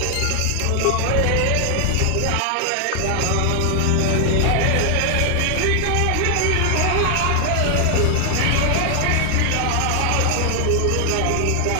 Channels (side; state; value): both; different; correlation 0.00